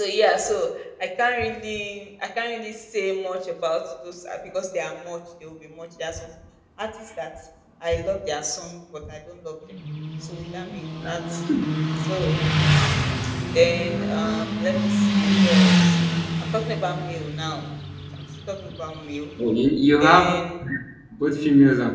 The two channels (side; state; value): both; identical; correlation 1.00